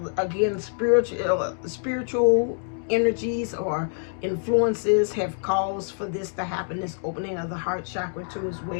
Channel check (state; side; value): silent; right; 61 dB below the other